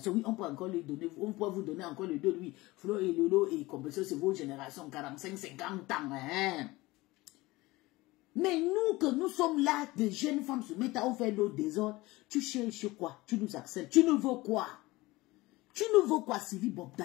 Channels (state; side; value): quieter; right; 20.5 dB